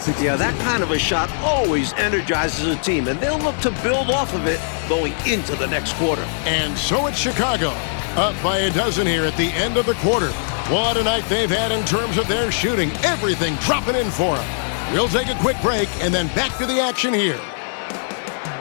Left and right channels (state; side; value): silent; right; digital silence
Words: Yeah, that kind of a shot always energizes a team, and they'll look to build off of it going into the next quarter. And so it's Chicago, up by a dozen here at the end of the quarter. What a night they've had in terms of their shooting. Everything dropping in for them. We'll take a quick break and then back to the action here.